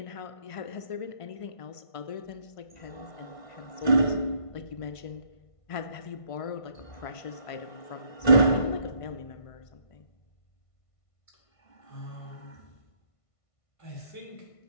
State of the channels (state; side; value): late; right; 1.5 ms